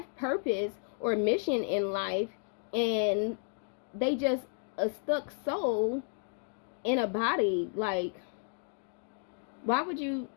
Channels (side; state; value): right; silent; 56 dB below the other